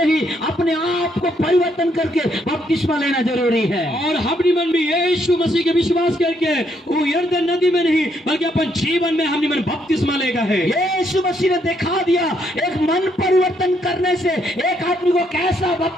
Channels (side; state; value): both; normal; correlation 0.73